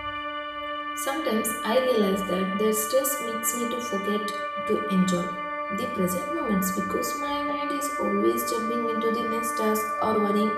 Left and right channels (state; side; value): identical; both; correlation 1.00